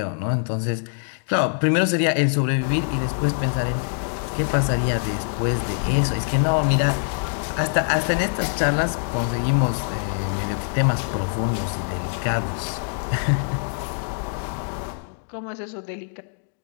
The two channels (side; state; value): right; silent; digital silence